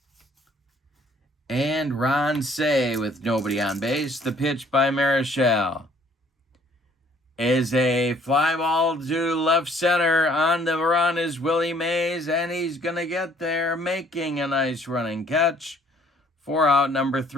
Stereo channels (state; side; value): normal; both; correlation 0.60